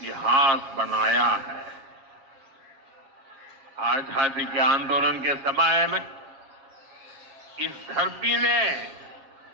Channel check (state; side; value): late; left; 7.3 ms